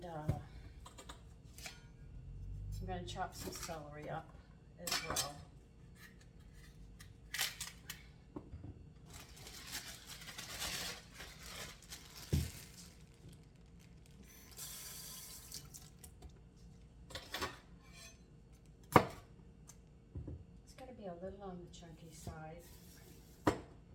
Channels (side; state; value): both; identical; correlation 1.00